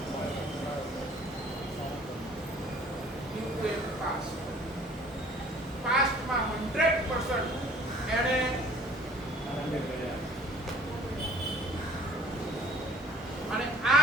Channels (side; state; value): both; normal; correlation 0.52